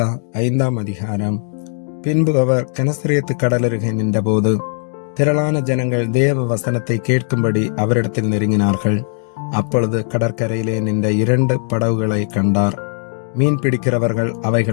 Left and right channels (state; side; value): silent; right; digital silence